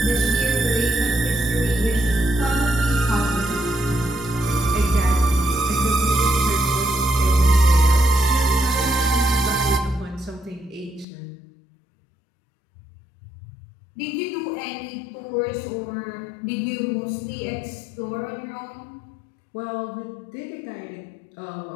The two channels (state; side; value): drops out; right; at 11.1 s